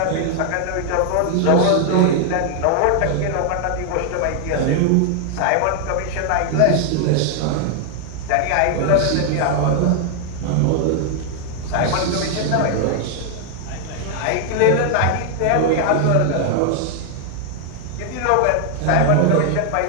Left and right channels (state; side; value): different; both; correlation 0.00